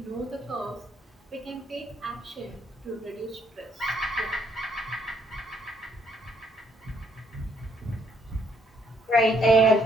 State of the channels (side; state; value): both; normal; correlation 0.69